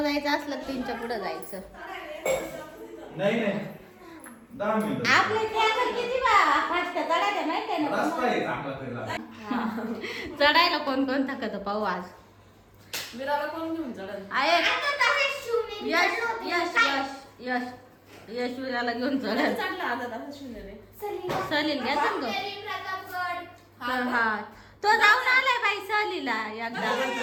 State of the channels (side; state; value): both; identical; correlation 1.00